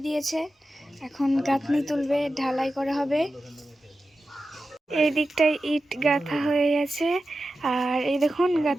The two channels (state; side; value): normal; both; correlation 0.93